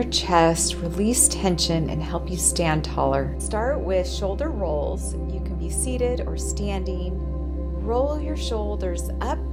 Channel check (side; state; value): both; identical; correlation 1.00